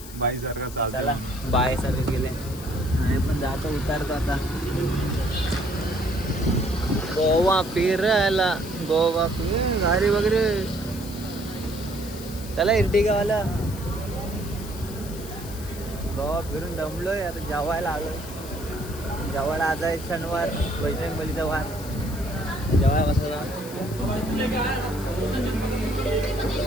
चला बाय सारखे गेले. आणि पण जातो उतारतो आता. गोवा फिरायला. गोवा गाडी वगैरे. चला इर्टिगावाला. गोवा फिरून दमलोय आता. जेवायला आलोय. जेवायला आज आहे शनिवार. बजरंग बलीचा वार. जेवायला बसला.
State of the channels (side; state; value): left; noise; hiss, 15 dB below the sound